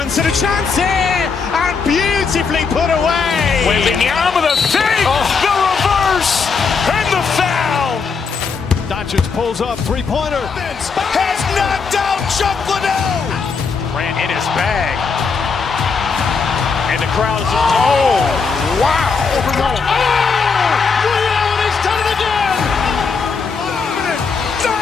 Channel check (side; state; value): right; quieter; 5.2 dB